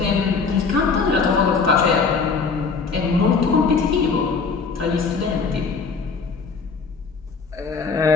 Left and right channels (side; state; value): right; quieter; 4.9 dB